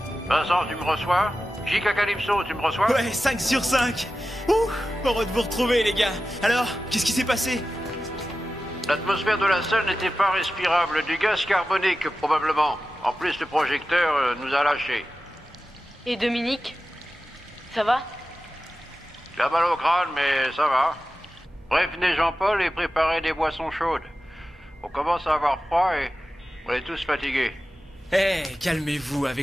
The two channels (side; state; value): both; normal; correlation 0.93